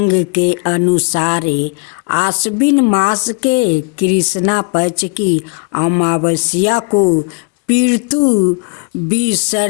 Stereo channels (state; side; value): quieter; right; 33.8 dB